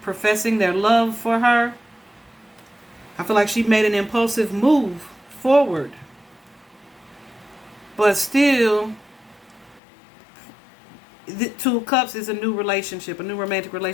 professing their love for her. I feel like she made an impulsive move forward. But still, the Two of Cups is a new relationship, a new romantic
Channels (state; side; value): drops out; right; at 9.8 s